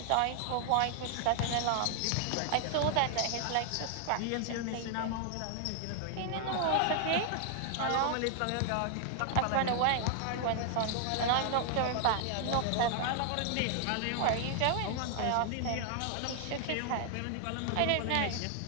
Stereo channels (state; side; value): different; both; correlation 0.00